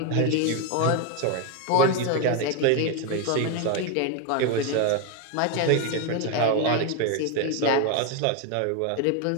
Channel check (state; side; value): different; both; correlation 0.01